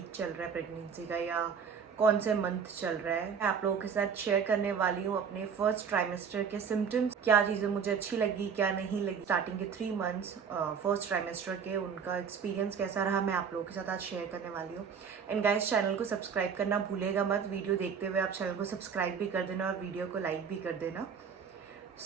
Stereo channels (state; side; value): quieter; left; 6.7 dB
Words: चल रहा है प्रेगनेंसी का या कौन से मंथ चल रहा है। मैं आप लोगों के साथ शेयर करने वाली हूँ अपने फर्स्ट ट्राइमेस्टर के सिम्टम्स, क्या चीज़ें मुझे अच्छी लगी क्या नहीं लगी। स्टार्टिंग के 3 मंथ्स फर्स्ट ट्राइमेस्टर के उनका एक्सपीरियंस कैसा रहा, मैं आप लोगों के साथ आज शेयर करने वाली हूँ। एंड गाइस, चैनल को सब्सक्राइब करना भूलेगा मत। वीडियो देखते हुए आप चैनल को सब्सक्राइब भी कर देना और वीडियो को लाइक भी कर देना।